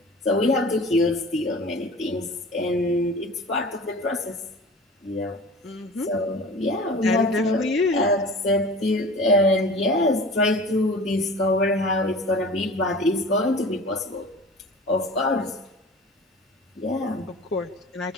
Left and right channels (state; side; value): normal; both; correlation 0.39